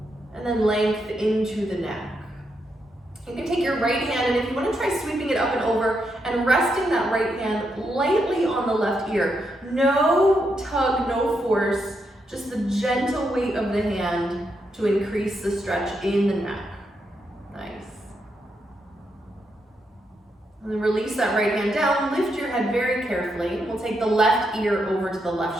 and then length into the neck. You can take your right hand, and if you want to try sweeping it up and over and resting that right hand lightly on the left ear. No tug, no force, just the gentle weight of the hand to increase the stretch in the neck. Nice. And then release that right hand down, lift your head very carefully. We'll take the left ear over to the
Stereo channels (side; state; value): both; normal; correlation 0.81